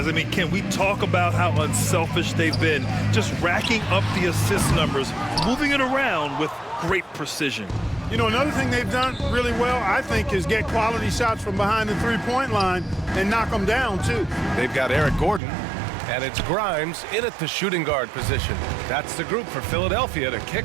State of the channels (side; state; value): left; drops out; at 15.4 s